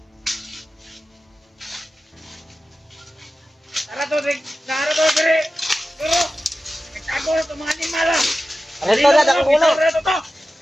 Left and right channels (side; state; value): both; normal; correlation 0.94